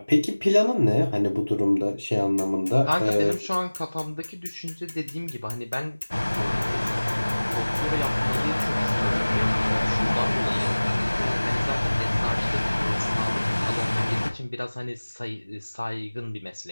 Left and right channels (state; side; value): inverted; both; correlation -1.00